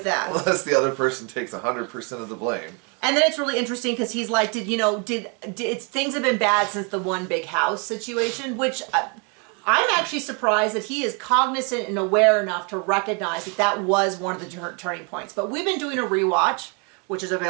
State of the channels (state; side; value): quieter; left; 34.4 dB